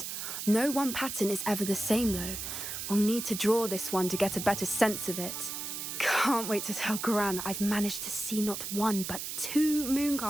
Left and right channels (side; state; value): right; noise; hiss, 5 dB below the sound